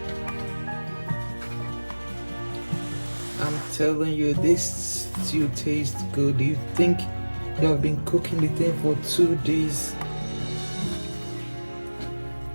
I'm telling you, this stew tastes good. You think you have been cooking the thing for 2 days.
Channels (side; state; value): both; inverted; correlation -1.00